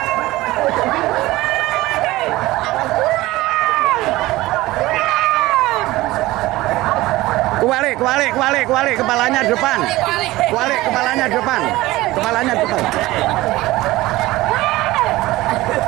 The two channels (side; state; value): left; quieter; 18.3 dB